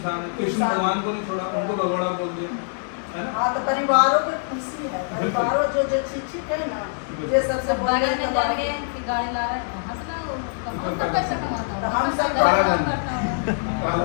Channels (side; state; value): right; silent; 59 dB below the other